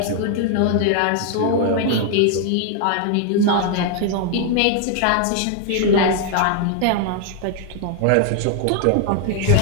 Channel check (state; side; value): different; both; correlation 0.00